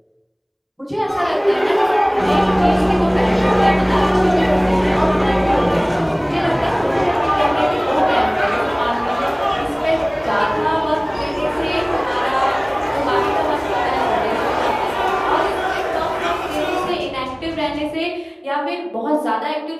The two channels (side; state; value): both; identical; correlation 1.00